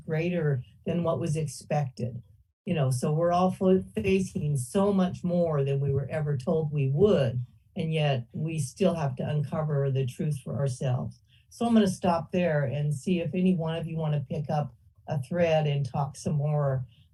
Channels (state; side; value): identical; both; correlation 1.00